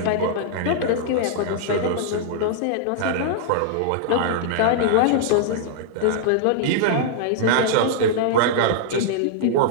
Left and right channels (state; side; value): different; both; correlation -0.02